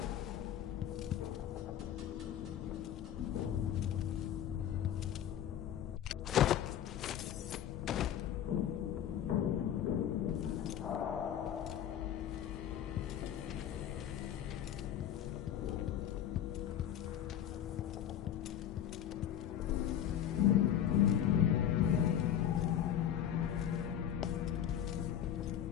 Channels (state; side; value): quieter; right; 10.2 dB